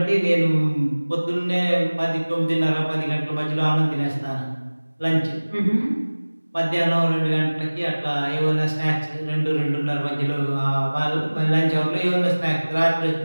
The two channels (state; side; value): inverted; both; correlation -1.00